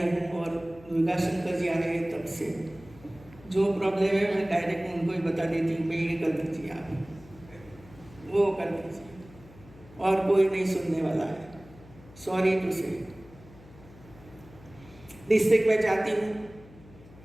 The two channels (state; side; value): noise; left; hum, 21 dB below the sound